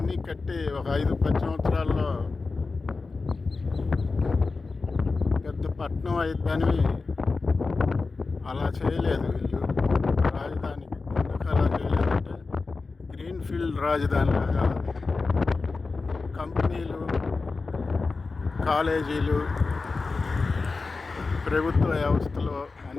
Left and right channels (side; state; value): right; quieter; 4.0 dB